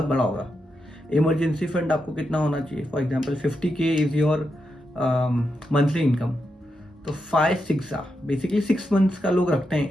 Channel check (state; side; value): normal; both; correlation 0.85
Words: बड़ा होगा. Emergency fund आपको कितना होना चाहिए? For example 50K is your monthly income. तो 5-6 बेसिकली 6 मंथ्स का लोग रखते हैं